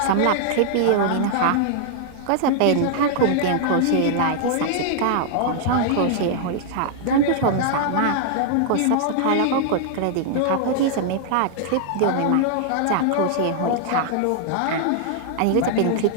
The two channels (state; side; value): different; both; correlation 0.00